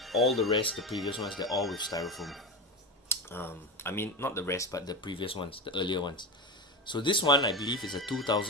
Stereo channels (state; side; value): normal; both; correlation 0.19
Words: all the rest, the previous ones, they're all with styrofoam. I mean, not the rest, but the previous ones, the earlier ones. So this one, I believe, is a